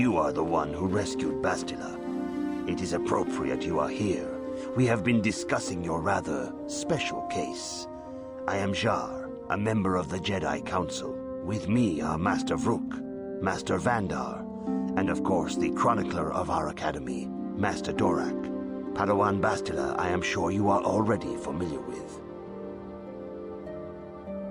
are the one who rescued Bastila. It is appropriate you are here. We have been discussing your rather special case. I am Jar, a member of the Jedi Council. With me are Master Vrook, Master Vandar, and of course the chronicler of our academy, Master Dorak. Padawan Bastila, I am sure you are already familiar with.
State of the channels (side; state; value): both; identical; correlation 1.00